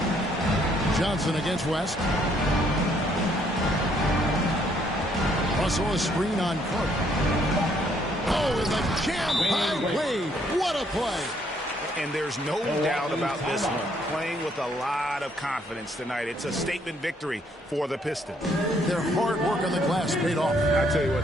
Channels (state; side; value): normal; both; correlation 0.68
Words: Johnson against West. Russell a screen on Carter. Oh, and the jam by Wade. What a play. And there's no doubt about this one. Playing with a lot of confidence tonight. It's a statement victory for the Pistons. Their hard work on the glass paid off. I tell you what,